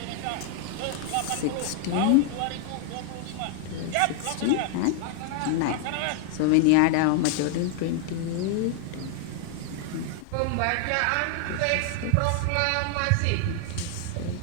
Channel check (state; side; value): different; both; correlation 0.00